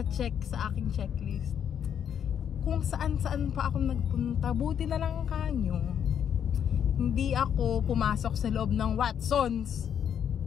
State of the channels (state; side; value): quieter; right; 8.6 dB